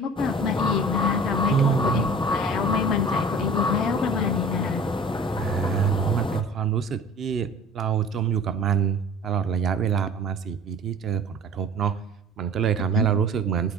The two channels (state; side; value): normal; both; correlation 0.43